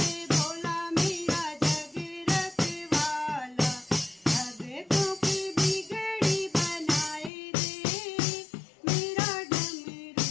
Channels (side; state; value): right; drops out; at 7.3 s